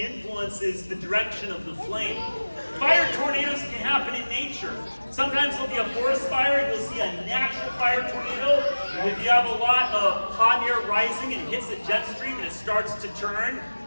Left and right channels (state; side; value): inverted; both; correlation -1.00